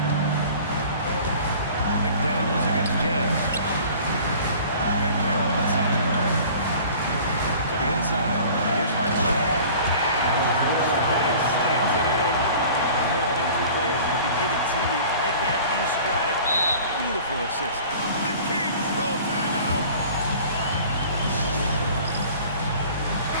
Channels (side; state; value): both; inverted; correlation -0.45